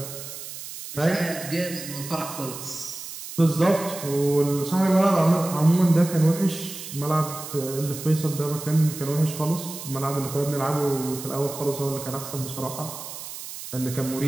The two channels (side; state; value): right; noise; hiss, 10 dB below the sound